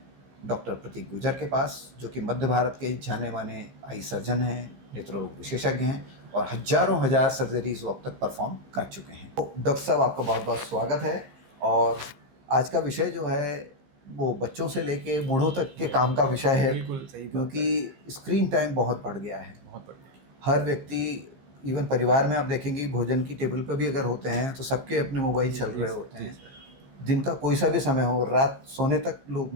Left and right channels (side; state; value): left; late; 15 ms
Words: डॉक्टर प्रतीक गुर्जर के पास, जो कि मध्य भारत के जाने माने आई सर्जन हैं, नेत्र रोग विशेषज्ञ हैं और हज़ारों हज़ार सर्जरीज वो अब तक परफॉर्म कर चुके हैं। तो डॉक्टर साहब, आपका बहुत बहुत स्वागत है। और आज का विषय जो है वो बच्चों से लेके बूढ़ों तक के काम का विषय है। बिल्कुल सही, क्योंकि स्क्रीन टाइम बहुत बढ़ गया है। बहुत बढ़िया। हर व्यक्ति, इवन परिवार में आप देखेंगे भोजन की टेबल पर भी अगर होते हैं तो सबके अपने मोबाइल चल रहे होते हैं। दिन का कोई सा भी समय हो, रात सोने तक लोग